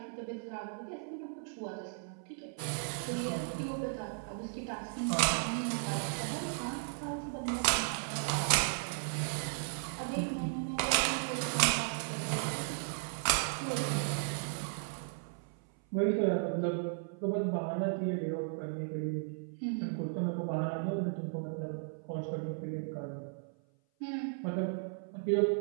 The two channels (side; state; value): left; silent; 54 dB below the other